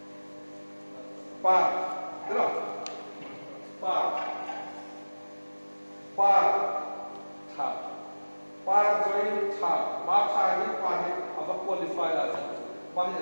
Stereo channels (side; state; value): both; inverted; correlation -1.00